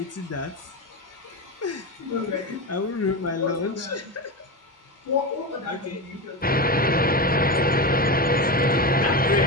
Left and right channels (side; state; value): both; normal; correlation 0.19